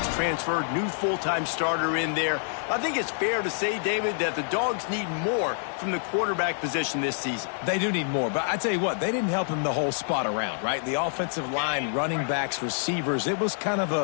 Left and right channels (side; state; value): right; silent; digital silence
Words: transferred, new full-time starter in there. I think it's fair to say, David, that the Dogs need more from the quarterback position this season. They do need more, but I tell you what, they didn't help him the whole spot around, right? The offensive line, running backs, receivers, it was kind of